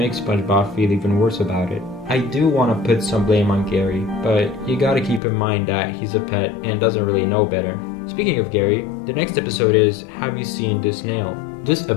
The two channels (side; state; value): right; drops out; at 5.2 s